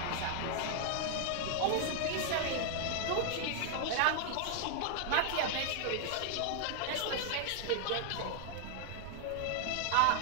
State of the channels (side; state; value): both; different; correlation 0.00